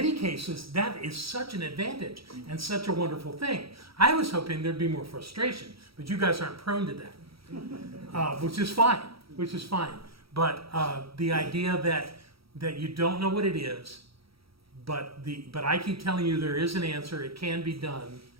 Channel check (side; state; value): left; late; 0.75 ms